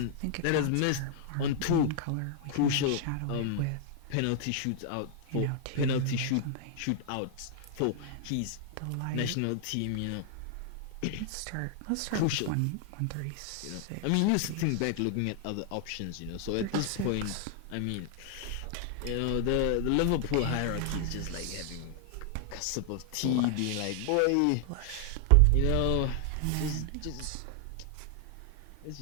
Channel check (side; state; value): both; different; correlation 0.00